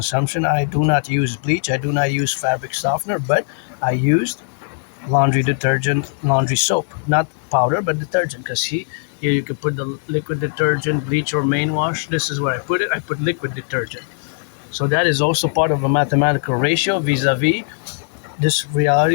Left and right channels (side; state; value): right; silent; digital silence